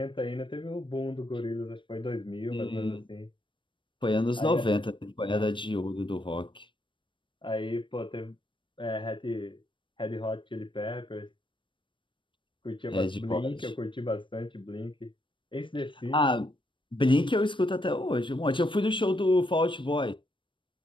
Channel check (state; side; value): late; right; 0.24 ms